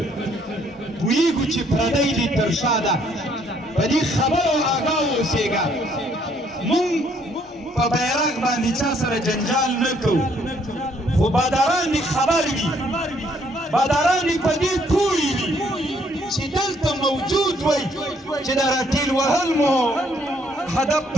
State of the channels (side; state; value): both; normal; correlation 0.67